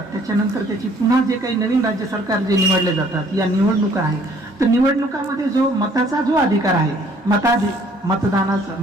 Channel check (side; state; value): both; normal; correlation 0.59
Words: त्याच्यानंतर त्याची पुन्हा जे काही नवीन राज्य सरकार जे निवडले जातात, या निवडणुका आहे, तर निवडणुकामध्ये जो मताचा जो अधिकार आहे, मतदानाचा